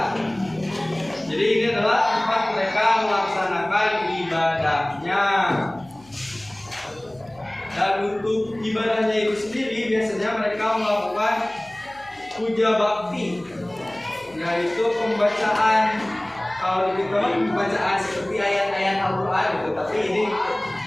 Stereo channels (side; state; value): left; noise; hum, 28 dB below the sound